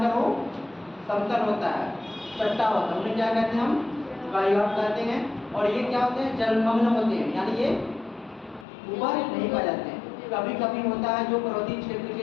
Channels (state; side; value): drops out; right; at 8.7 s